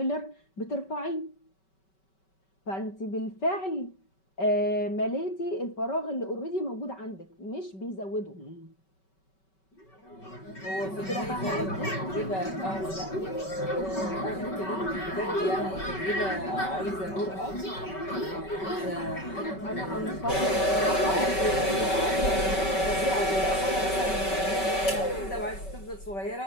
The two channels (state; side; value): late; right; 5.2 ms